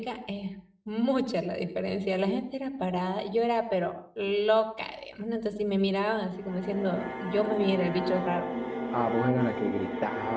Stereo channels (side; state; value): both; identical; correlation 1.00